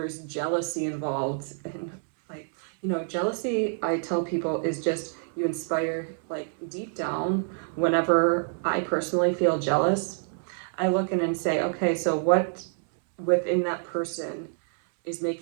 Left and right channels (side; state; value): left; silent; 60 dB below the other